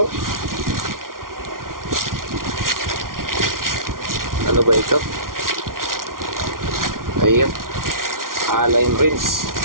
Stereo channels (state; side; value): late; left; 0.91 ms